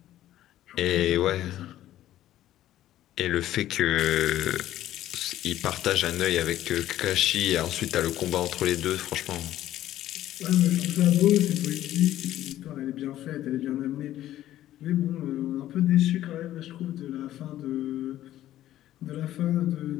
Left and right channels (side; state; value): right; quieter; 13.3 dB